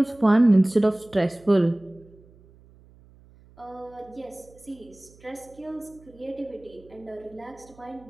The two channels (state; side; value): noise; right; hum, 26 dB below the sound